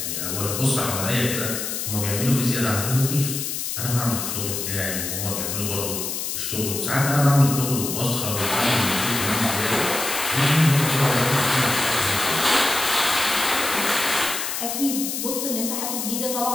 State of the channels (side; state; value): left; noise; hiss, 3 dB below the sound